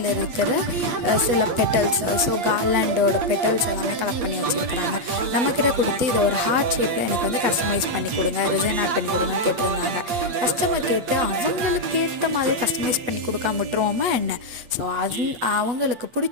இருக்கிற சில பெட்டல்ஸ், ஸோ கார்லாண்டோட பெட்டல்ஸ் எல்லாமே கலெக்ட் பண்ணி வச்சுருக்குறாங்க. நம்மக்கிட்ட கொடுத்து இது ஒரு ஹார்ட் ஷேப்பில் எனக்கு வந்து கஸ்டமைஸ் பண்ணி கொடுங்க, ரிசைன் ஆட் பண்ணி கொடுங்கன்னு கேட்டிருந்தாங்க. கஸ்டமர் கேட்டு அவங்களுக்கு ஏற்ற மாதிரி கஸ்டமைஸ் பண்ணி கொடுக்காம விட்டுருவோமா என்ன? ஸோ அது அவங்களுக்கு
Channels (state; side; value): late; left; 8.5 ms